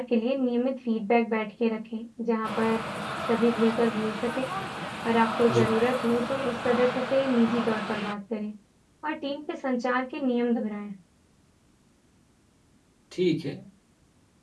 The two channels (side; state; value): both; identical; correlation 1.00